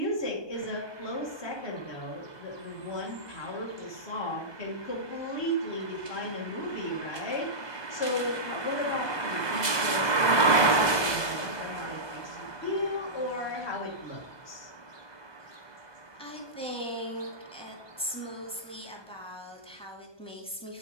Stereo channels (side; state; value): right; late; 1.2 ms